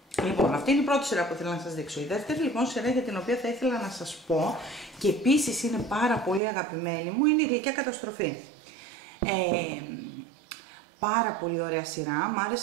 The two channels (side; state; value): left; drops out; at 6.4 s